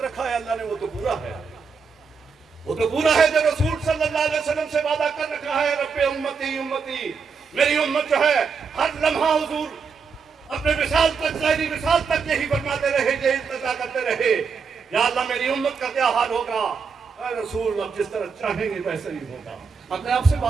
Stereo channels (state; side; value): quieter; left; 5.5 dB